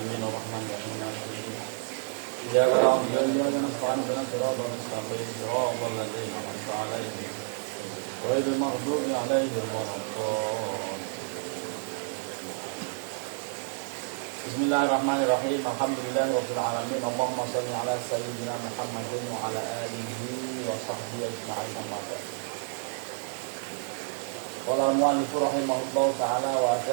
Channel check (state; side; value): silent; left; 58 dB below the other